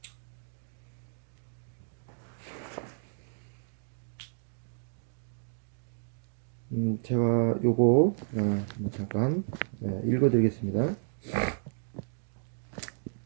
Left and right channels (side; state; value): left; silent; digital silence